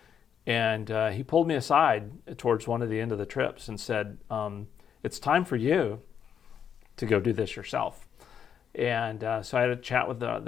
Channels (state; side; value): quieter; right; 8.1 dB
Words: and he pulled me aside towards one of the end of the trips and said, "It's time for you to go do this yourself." And so I had a chat with